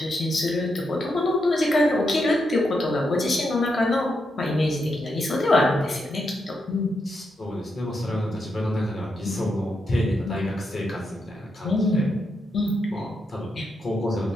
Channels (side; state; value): both; normal; correlation 0.83